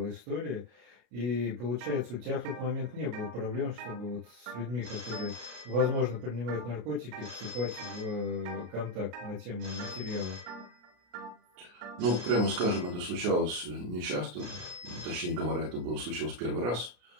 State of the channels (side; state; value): left; late; 34 ms